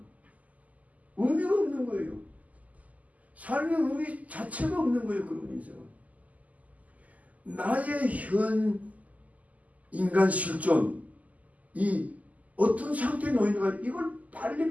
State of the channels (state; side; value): late; left; 0.075 ms